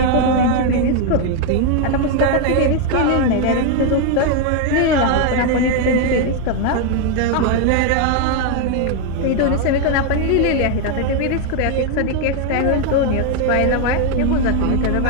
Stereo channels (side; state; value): both; different; correlation 0.01